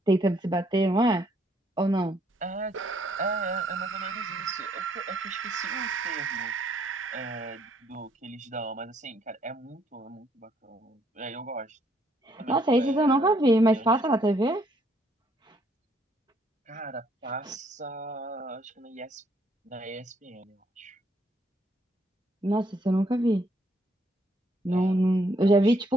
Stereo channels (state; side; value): normal; both; correlation 0.69